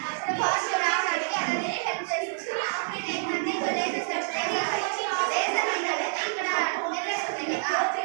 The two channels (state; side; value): silent; left; digital silence